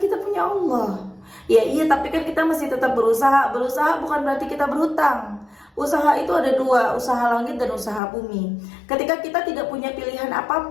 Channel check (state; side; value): drops out; right; at 8.0 s